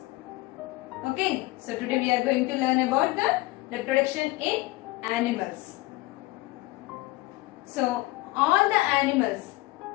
Okay, so today we are going to learn about the reproduction in animals. So all the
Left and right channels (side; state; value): right; quieter; 20.2 dB